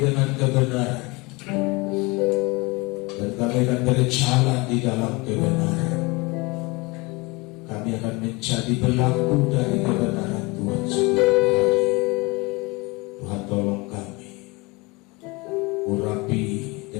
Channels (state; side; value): quieter; right; 25.1 dB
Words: dengan kebenaran, dan kami akan berjalan di dalam kebenaran. Kami akan menjadi pelaku dari kebenaran Tuhan setiap hari. Tuhan tolong kami, urapi